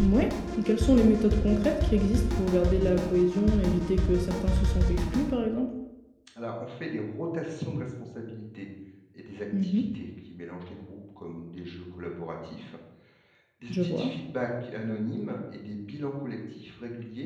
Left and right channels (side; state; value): both; identical; correlation 1.00